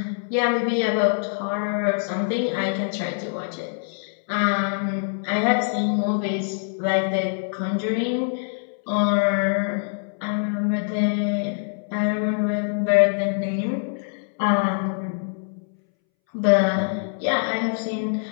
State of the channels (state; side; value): silent; right; 63 dB below the other